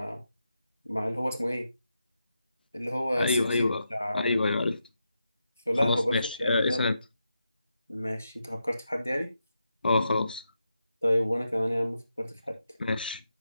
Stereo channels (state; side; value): inverted; both; correlation -0.85